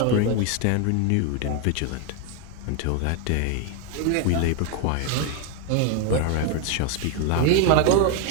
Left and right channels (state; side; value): different; both; correlation 0.01